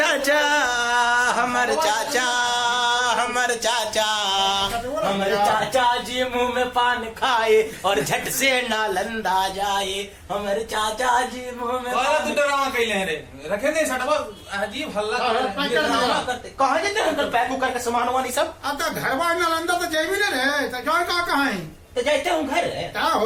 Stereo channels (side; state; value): both; identical; correlation 1.00